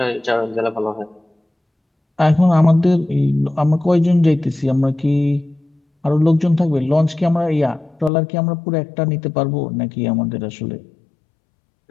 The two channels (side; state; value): right; drops out; at 8.1 s